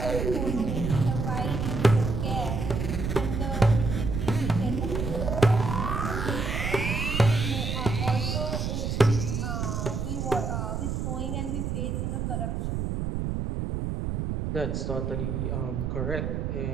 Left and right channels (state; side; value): noise; right; rumble, 1 dB below the sound